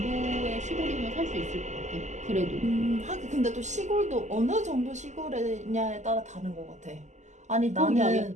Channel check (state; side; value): late; left; 0.34 ms